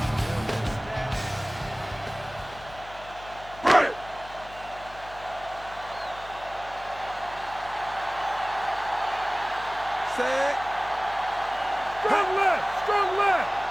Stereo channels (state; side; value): noise; left; hum, 18 dB below the sound